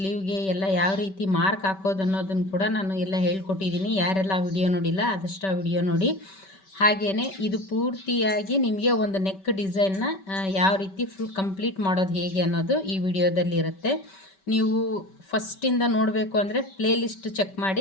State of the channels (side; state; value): right; late; 5.2 ms